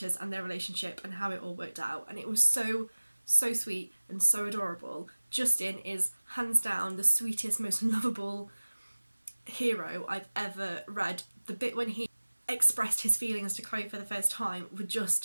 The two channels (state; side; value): inverted; both; correlation -1.00